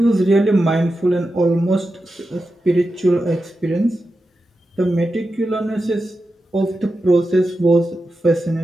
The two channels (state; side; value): normal; both; correlation 0.90